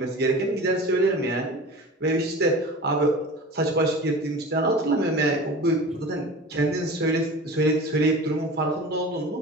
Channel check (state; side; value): normal; both; correlation 0.36